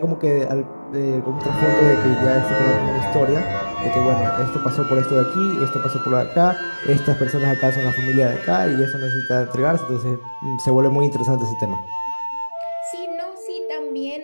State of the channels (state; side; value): inverted; both; correlation -1.00